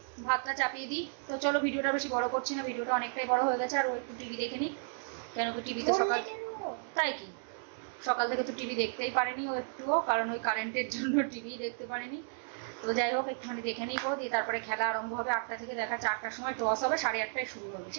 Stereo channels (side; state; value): left; silent; digital silence